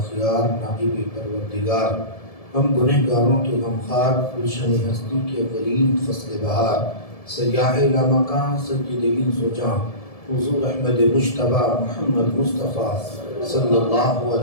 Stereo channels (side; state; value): right; late; 1.7 ms